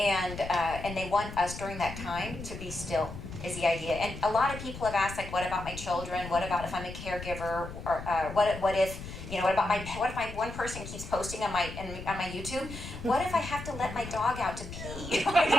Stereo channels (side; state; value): left; noise; rumble, 10 dB below the sound